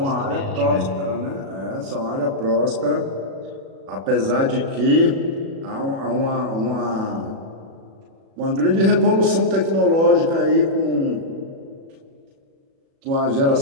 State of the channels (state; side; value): late; left; 36 ms